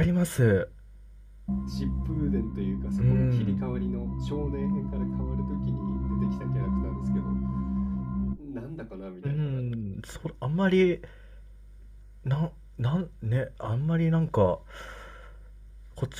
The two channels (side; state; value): both; identical; correlation 1.00